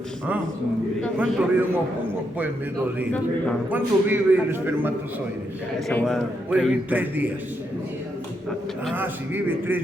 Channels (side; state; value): both; normal; correlation 0.80